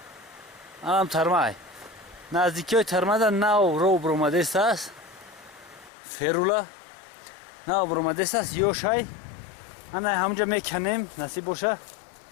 هم ترمه نزدیکی های ترمه در نو رو برامده است فرولا نو برامده است یوشای همونجا میکنیم نصیب باشه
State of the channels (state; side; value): drops out; right; at 5.9 s